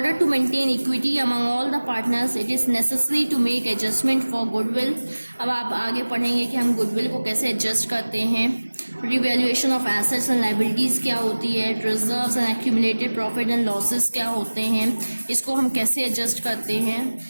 to maintain equity among all the partners, it is necessary to make adjustment for goodwill। अब आप आगे पढ़ेंगे कि हम गुडविल को कैसे एडजस्ट करते हैं। Revaluation of assets and liabilities क्या होती है, reserves and accumulated profit and losses क्या होते हैं, इसको हम कैसे एडजस्ट करते हैं।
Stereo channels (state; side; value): inverted; both; correlation -1.00